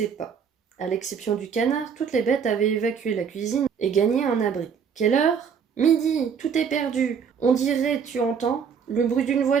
pas. À l'exception du canard, toutes les bêtes avaient évacué la cuisine et gagné un abri. « Quelle heure ? Midi, tout est perdu. On dirait, tu entends, le bruit d'une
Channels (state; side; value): quieter; left; 6.8 dB